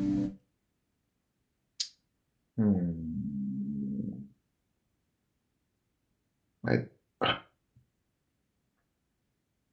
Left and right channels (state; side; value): identical; both; correlation 1.00